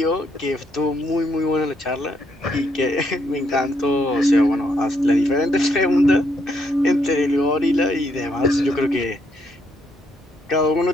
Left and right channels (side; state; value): both; normal; correlation 0.74